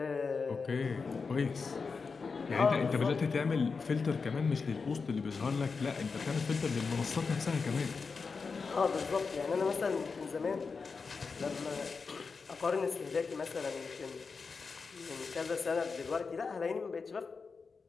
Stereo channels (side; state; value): right; quieter; 4.9 dB